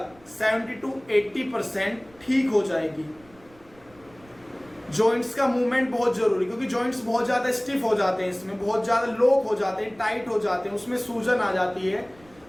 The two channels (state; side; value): noise; right; rumble, 28 dB below the sound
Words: 70 to 80% ठीक हो जाएगी। जॉइंट्स का मूवमेंट बहुत जरूरी, क्योंकि जॉइंट्स बहुत ज्यादा स्टिफ हो जाते हैं, इसमें बहुत ज्यादा लॉक हो जाते हैं, टाइट हो जाते हैं, उसमें सूजन आ जाती है।